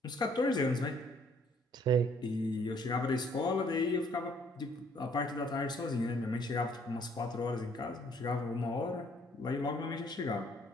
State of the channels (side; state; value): both; normal; correlation 0.63